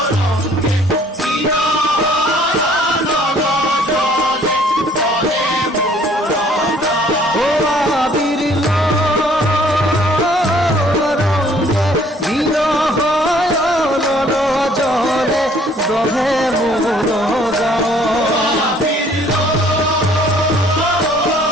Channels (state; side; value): normal; both; correlation 0.58